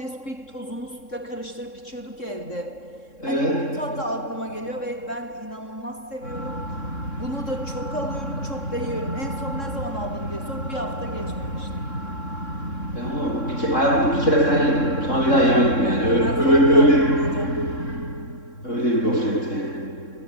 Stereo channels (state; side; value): late; right; 3.6 ms